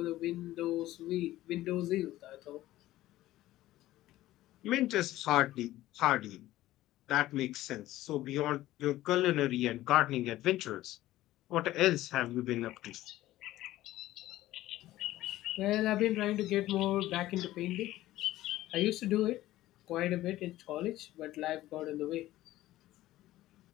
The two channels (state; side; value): quieter; right; 15.5 dB